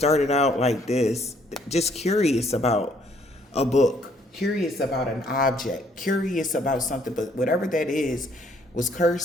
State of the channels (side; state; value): both; normal; correlation 0.65